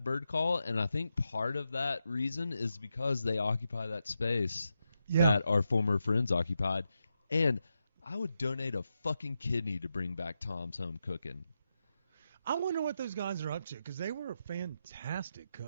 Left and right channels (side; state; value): both; inverted; correlation -0.87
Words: bird call, and I think part of that reason is because they occupy that space that our former friends occupied. And I would donate a fucking kidney to bring back Tom's Home Cooking. I wonder what those guys are up to, because they were fantastic